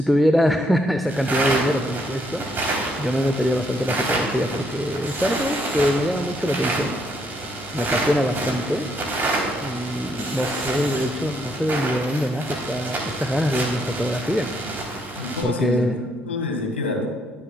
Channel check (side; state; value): both; normal; correlation 0.72